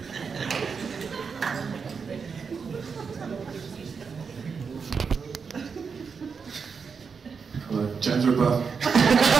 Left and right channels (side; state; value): left; quieter; 5.7 dB